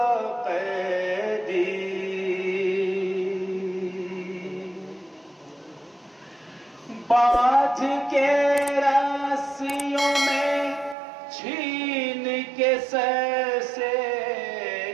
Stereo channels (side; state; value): left; drops out; at 11.0 s